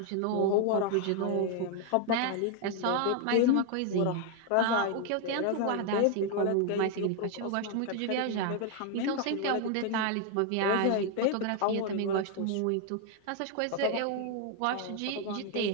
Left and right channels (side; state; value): both; different; correlation 0.00